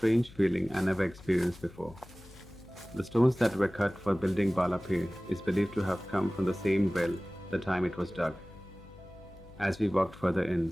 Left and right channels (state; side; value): noise; left; hum, 21 dB below the sound